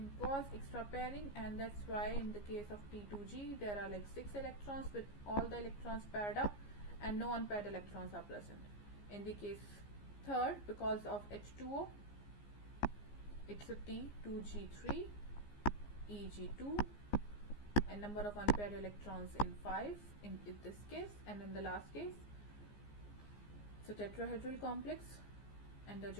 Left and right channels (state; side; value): late; right; 15 ms